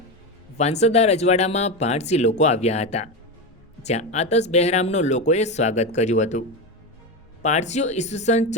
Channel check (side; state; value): both; normal; correlation 0.17